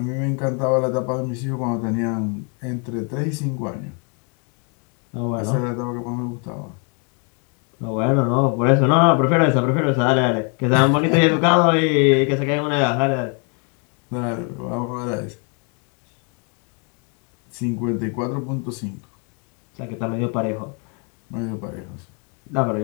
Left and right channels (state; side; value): quieter; right; 37.4 dB